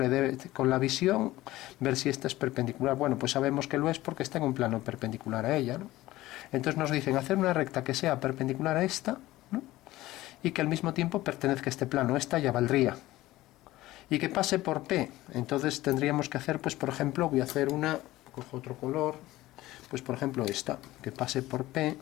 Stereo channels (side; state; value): right; quieter; 17.0 dB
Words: con la visión ver si esta es perpendicular. Bueno, pues sabemos que lo es porque está en un plano perpendicular a ella, ¿no? Entonces nos dicen hacer una recta que sea perpendicular a esta, ¿no? Y que al mismo tiempo pertenezca a este plano. Esta ya valdría. Y que pase por P. Entonces tendríamos que hacer, pues por ejemplo, voy a hacer una, cojo otro color, pues por ejemplo esta, que pase por P.